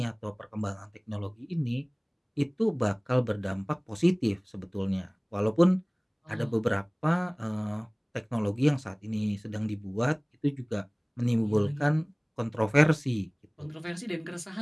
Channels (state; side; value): identical; both; correlation 1.00